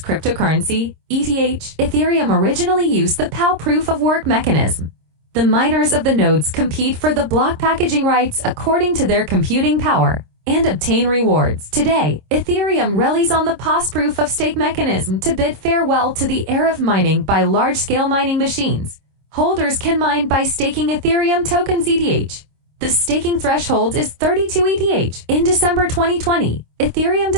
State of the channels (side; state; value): left; late; 26 ms